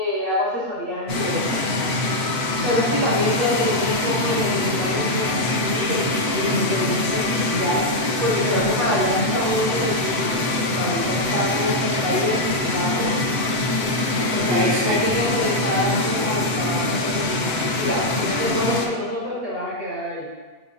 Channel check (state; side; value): late; left; 7.9 ms